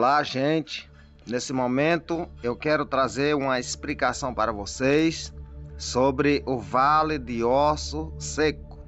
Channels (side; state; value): both; identical; correlation 1.00